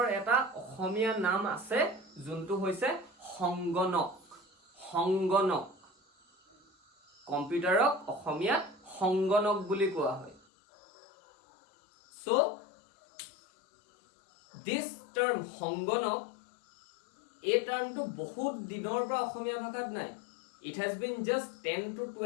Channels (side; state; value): right; drops out; at 10.4 s